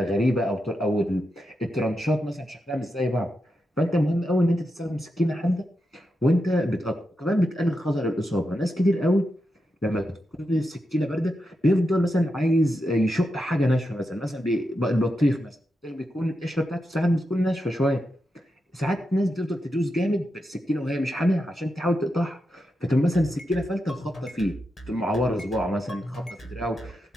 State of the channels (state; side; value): normal; both; correlation 0.87